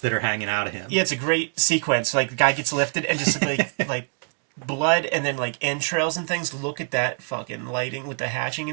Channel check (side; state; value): left; quieter; 38.4 dB